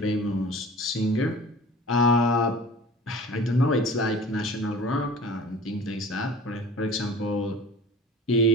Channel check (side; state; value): both; normal; correlation 0.42